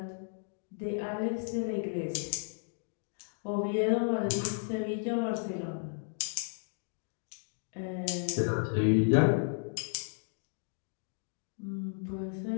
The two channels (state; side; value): silent; right; 55 dB below the other